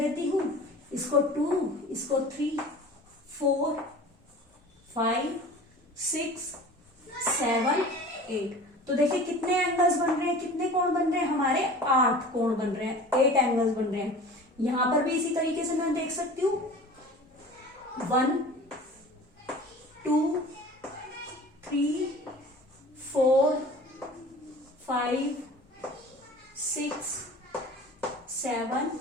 हूँ, इसको 2, इसको 3, 4, 5, 6, 7, 8। तो देखिए कितने एंगल्स बन रहे हैं, कितने कोण बन रहे हैं हमारे, 8 कोण बन रहे हैं, 8 एंगल्स बन रहे हैं। यहां पर भी इसी तरीके से मैं देख सकती हूँ 1, 2, 3, 4, 5, 6, 7,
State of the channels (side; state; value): both; normal; correlation 0.41